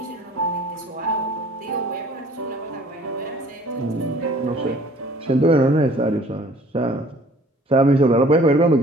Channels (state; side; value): normal; both; correlation 0.53